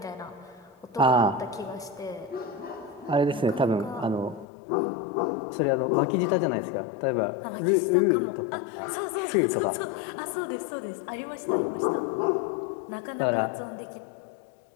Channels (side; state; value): right; drops out; at 4.5 s